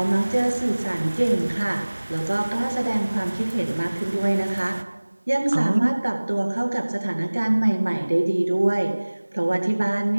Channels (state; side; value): inverted; both; correlation -1.00